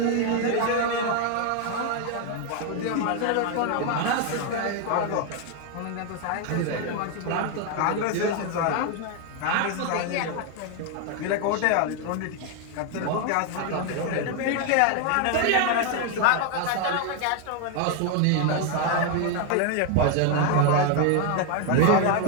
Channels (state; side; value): different; both; correlation 0.01